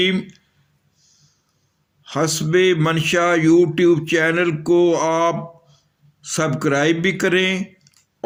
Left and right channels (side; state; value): both; identical; correlation 1.00